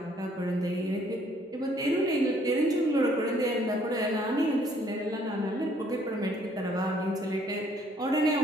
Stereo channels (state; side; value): normal; both; correlation 0.63